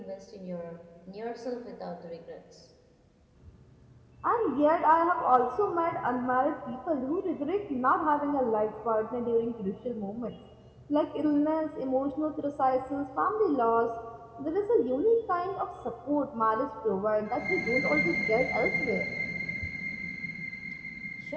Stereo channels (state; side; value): identical; both; correlation 1.00